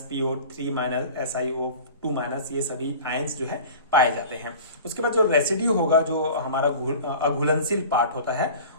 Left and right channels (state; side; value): inverted; both; correlation -0.39